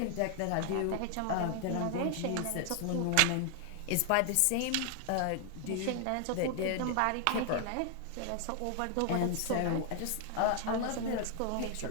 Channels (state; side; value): different; both; correlation 0.00